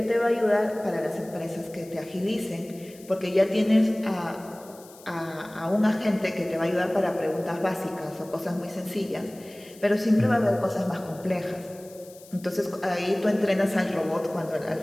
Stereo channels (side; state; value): left; noise; hiss, 22 dB below the sound